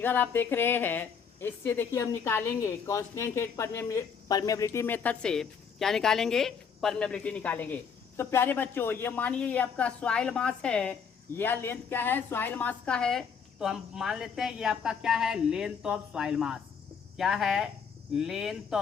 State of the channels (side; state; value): right; quieter; 6.6 dB